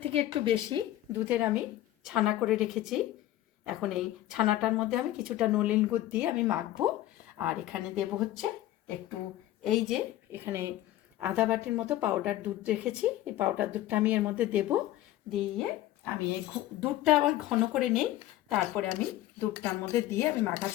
থেকে একটু বেশি দুধের আমি ছানা করে রেখেছি। এখন এই ছানাটার মধ্যে আমি কিছুটা নলেন গুড় দিয়ে আমি মাখবো। আর এখানে দেব হচ্ছে একটু, এই যে এখানে আধা বাটির মতো পাউডার দুধ রেখেছি, এই পাউডার দুধটা আমি এর মধ্যে দেব। দিয়ে আমি এই দুধটা আবার ঘন করে নিই, তারপরে আমি দুধটার মধ্যে দিয়ে আমি মাখা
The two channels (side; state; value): right; quieter; 14.3 dB